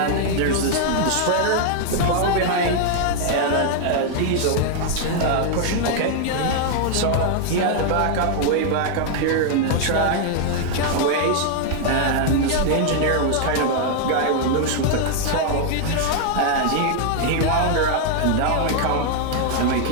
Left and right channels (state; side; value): different; both; correlation 0.00